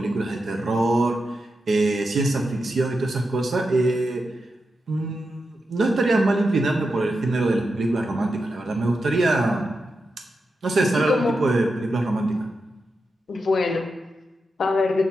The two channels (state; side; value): normal; both; correlation 0.88